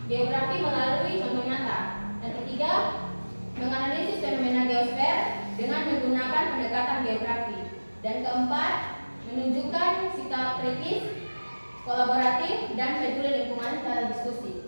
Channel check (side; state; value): both; inverted; correlation -1.00